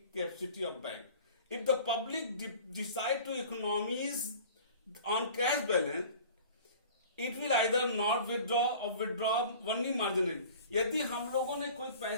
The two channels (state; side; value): inverted; both; correlation -0.44